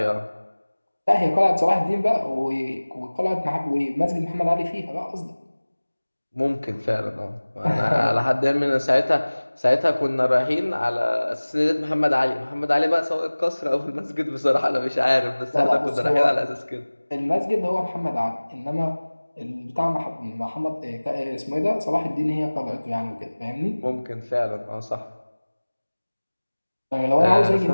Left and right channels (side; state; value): both; inverted; correlation -1.00